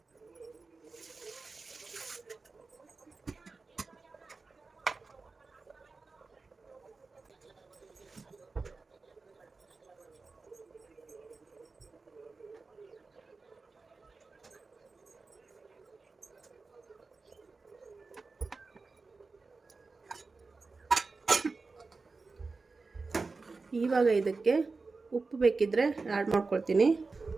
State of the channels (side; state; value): left; quieter; 4.0 dB